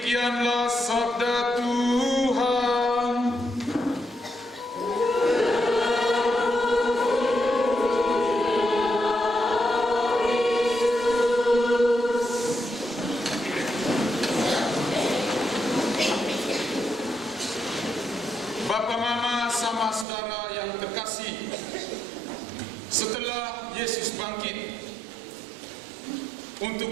sabda Tuhan. Bapak, Mama, sama saudara yang terkasih, setelah Yesus bangkit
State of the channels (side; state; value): left; drops out; at 20.1 s